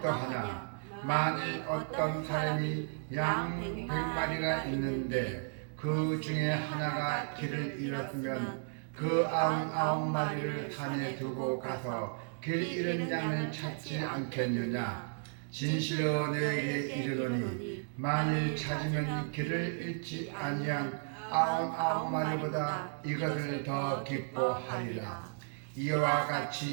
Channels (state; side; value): silent; left; digital silence